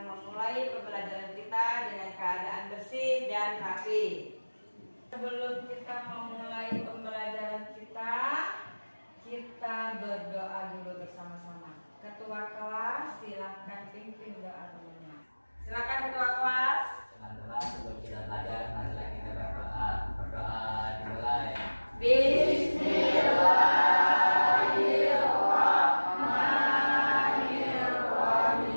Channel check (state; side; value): inverted; both; correlation -1.00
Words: memulai pembelajaran kita dengan keadaan bersih dan rapi. Sebelum kita memulai pembelajaran kita berdoa dulu bersama-sama. Ketua kelas, silakan pimpin doa temannya. Silakan ketua kelas. Teman-teman, sebelum kita belajar, marilah kita berdoa. Berdoa dimulai.